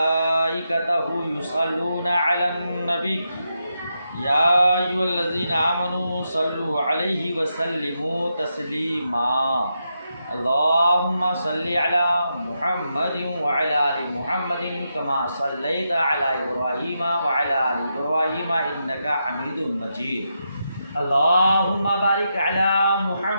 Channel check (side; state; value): both; inverted; correlation -0.84